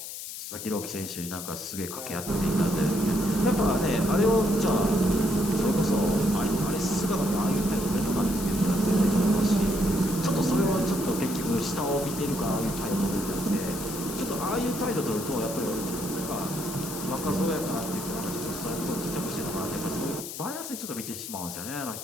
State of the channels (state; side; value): noise; left; hiss, 9 dB below the sound